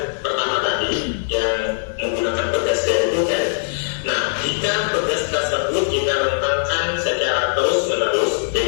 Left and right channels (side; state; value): right; silent; digital silence